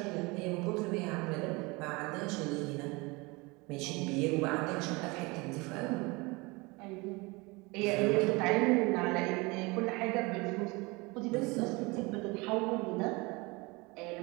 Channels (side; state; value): left; quieter; 25.4 dB